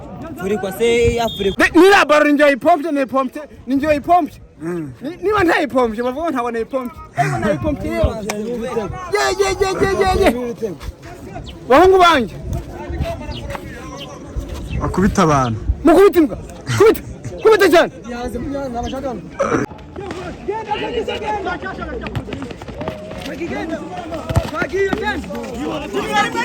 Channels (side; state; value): both; identical; correlation 1.00